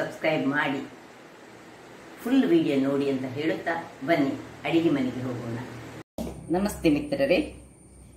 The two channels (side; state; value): both; identical; correlation 1.00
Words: ಮಾಡಿ ಫುಲ್ ವಿಡಿಯೋ ನೋಡಿ ಅಂತ ಹೇಳುತ್ತಾ ಬನ್ನಿ ಅಡಿಗೆ ಮನೆಗೆ ಹೋಗೋಣ. ನಮಸ್ತೆ ಮಿತ್ರರೇ.